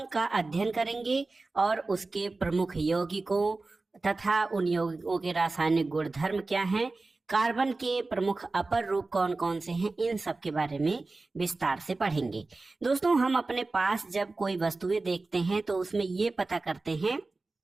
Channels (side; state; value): left; quieter; 3.5 dB